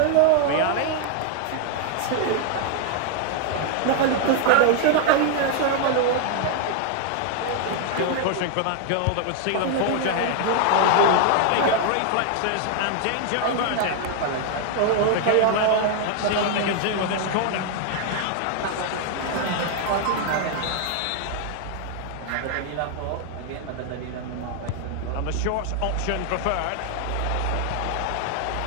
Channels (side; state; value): both; different; correlation 0.00